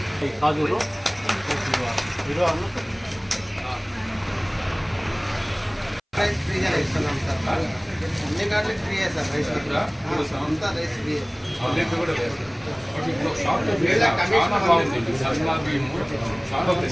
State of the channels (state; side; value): identical; both; correlation 1.00